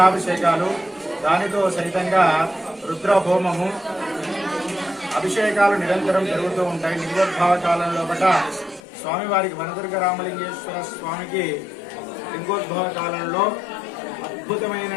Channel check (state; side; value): drops out; right; at 8.8 s